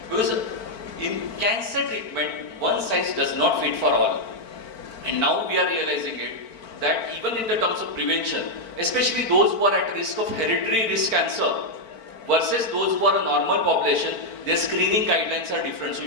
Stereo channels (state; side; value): late; right; 4.5 ms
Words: Because in cancer treatment, one size does not fit for all. And now we are realizing it, that even in the terms of prevention, especially those who are at risk of hereditary risk cancer versus those who are a normal population, their screening guidelines are different. So